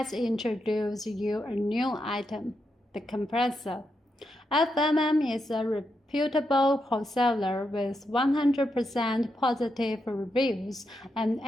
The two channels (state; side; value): normal; both; correlation 0.84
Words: introduce you a new item, the compressor. FMM is a reputable wholesaler with 100% positive reviews and